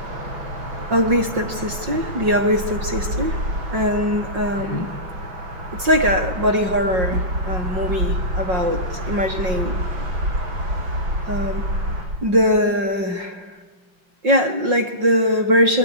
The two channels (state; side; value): late; left; 5.5 ms